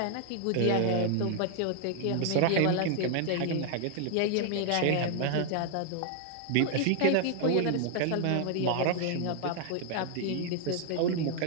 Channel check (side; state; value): both; different; correlation 0.00